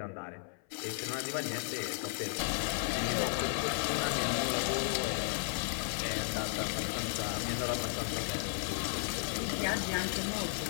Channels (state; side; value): silent; right; 55 dB below the other